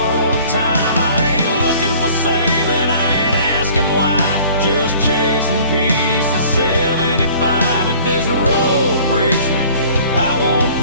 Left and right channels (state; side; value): inverted; both; correlation -0.50